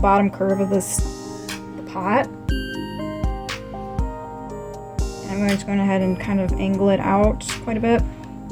curve of the pot. And I'm going to go ahead and kind of angle it out quite a bit.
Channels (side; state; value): both; identical; correlation 1.00